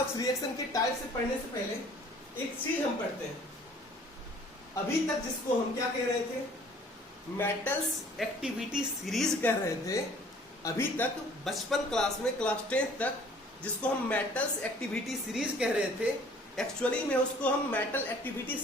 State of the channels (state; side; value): normal; both; correlation 0.54